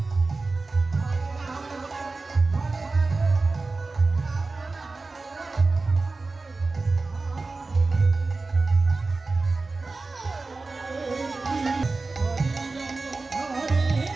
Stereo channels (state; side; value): quieter; left; 3.7 dB